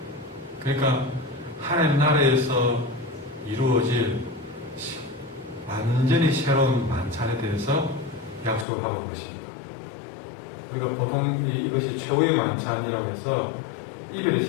그러니까 하나님 나라에서 이루어질 완전히 새로운 만찬에 대해서 약속을 하고 있는 것입니다. 우리가 보통 이것이 최후의 만찬이라고 해서 이별의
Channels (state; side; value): drops out; right; at 8.7 s